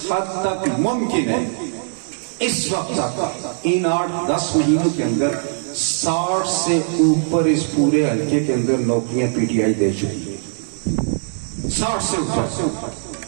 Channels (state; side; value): silent; left; 65 dB below the other